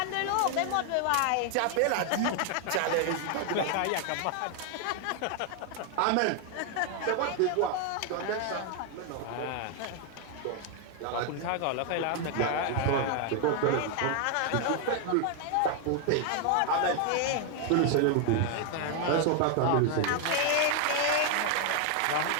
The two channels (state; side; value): different; both; correlation 0.01